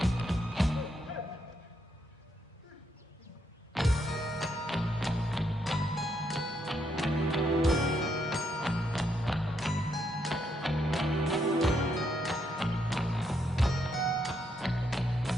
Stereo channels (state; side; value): normal; both; correlation 0.77